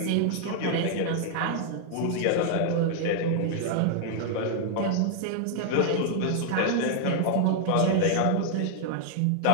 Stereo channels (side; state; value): both; different; correlation 0.00